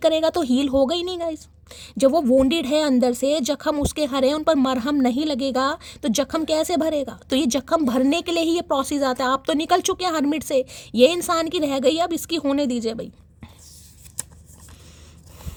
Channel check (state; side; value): identical; both; correlation 1.00